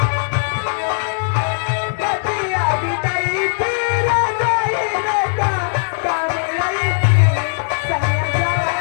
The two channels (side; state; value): right; silent; digital silence